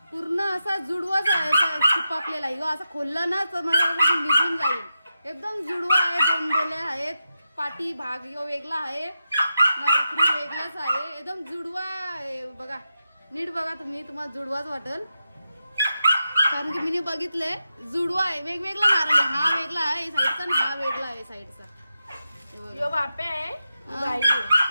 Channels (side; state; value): both; inverted; correlation -0.89